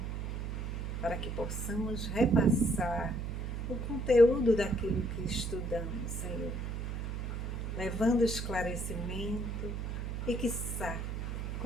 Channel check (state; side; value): noise; right; hum, 3 dB below the sound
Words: para que possamos repassar o conteúdo daquilo que estudamos, Senhor, levando esclarecimento e, quiçá,